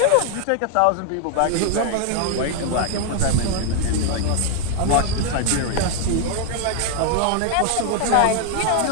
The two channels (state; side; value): different; both; correlation 0.00